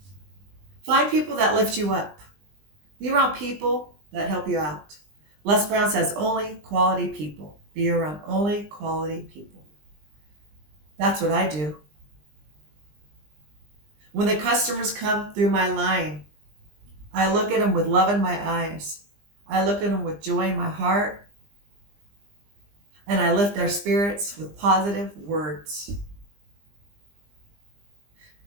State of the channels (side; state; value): left; late; 20 ms